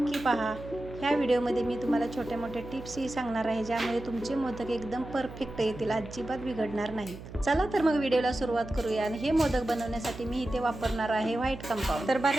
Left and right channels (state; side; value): noise; right; hum, 13 dB below the sound